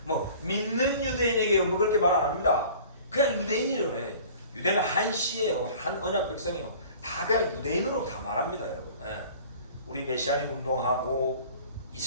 뭐 믿는 유대인에게요. 뭐 그렇게 말 안 합니다. 그냥 유대인이래요. 유대는 한 씨예요. 한 언약 백성이요. 다 그냥 유대인으로 다 말합니다, 여러분. 우리 메시아닉 운동하고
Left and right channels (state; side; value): inverted; both; correlation -0.46